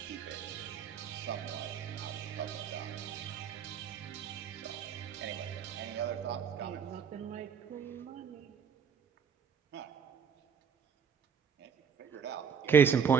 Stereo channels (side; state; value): left; quieter; 7.1 dB